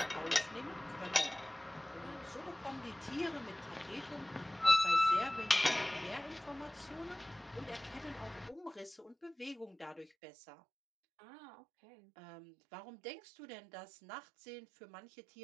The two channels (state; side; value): drops out; left; at 10.1 s